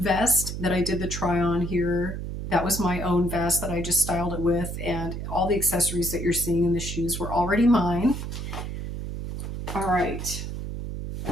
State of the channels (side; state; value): right; noise; hum, 6 dB below the sound